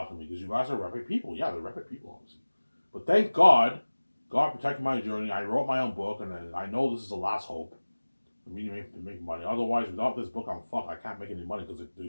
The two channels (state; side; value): inverted; both; correlation -1.00